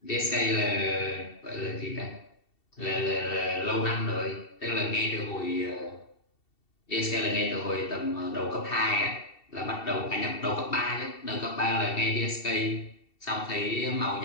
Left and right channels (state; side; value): late; right; 2.7 ms